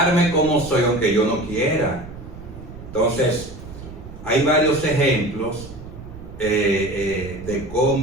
como soy, aunque yo no quiera. Entonces hay varios ejemplos de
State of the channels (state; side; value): noise; right; rumble, 14 dB below the sound